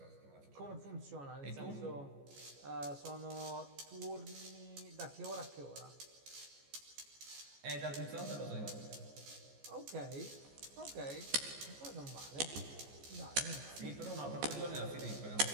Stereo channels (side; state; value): left; late; 14 ms